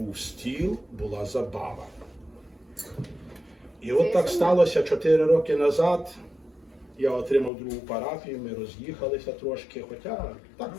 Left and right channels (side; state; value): right; drops out; at 7.5 s